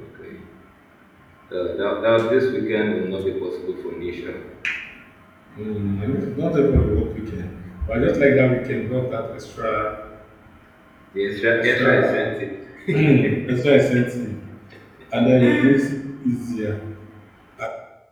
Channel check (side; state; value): both; identical; correlation 1.00